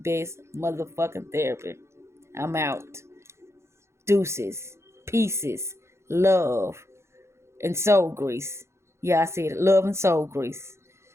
motherfucking therapy. I'm out. Deuces. Pieces. Love. And soul grease. Yeah, I said it. Love and soul grease.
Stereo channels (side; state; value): left; late; 0.13 ms